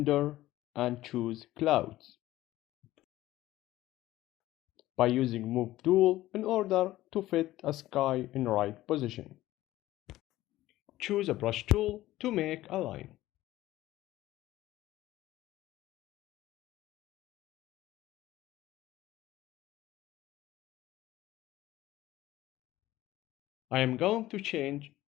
and choose clouds by using move tool in order to fit a sky in right position. Choose a brush tool to make a line. I am going to change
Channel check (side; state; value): right; quieter; 15.8 dB